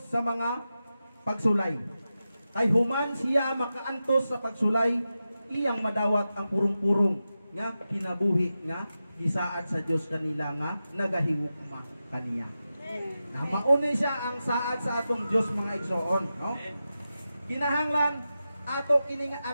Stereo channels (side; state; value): both; inverted; correlation -0.92